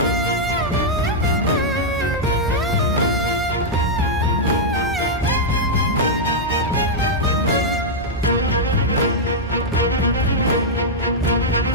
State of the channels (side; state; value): both; normal; correlation -0.05